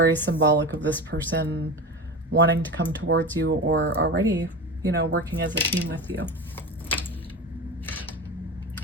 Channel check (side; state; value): both; normal; correlation 0.26